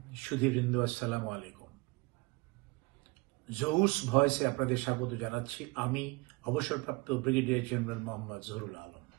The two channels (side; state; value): left; quieter; 25.6 dB